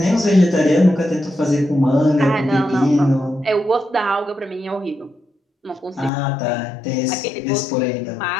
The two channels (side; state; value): right; drops out; at 6.1 s